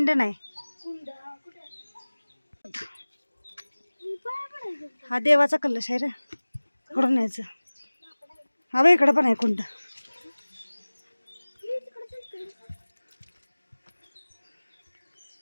नाही. हा देवाचा कलश आहे रे. इकडून न्यायचं. हा बघ इकडं पण आहे कुंड.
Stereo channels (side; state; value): both; inverted; correlation -1.00